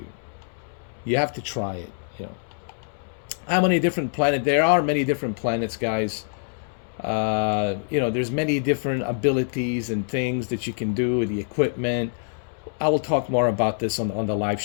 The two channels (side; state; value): right; silent; 62 dB below the other